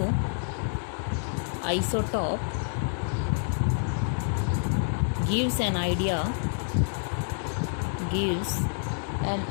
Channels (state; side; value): silent; right; digital silence